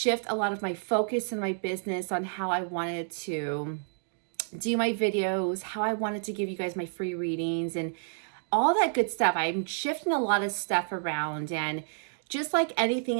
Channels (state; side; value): silent; left; digital silence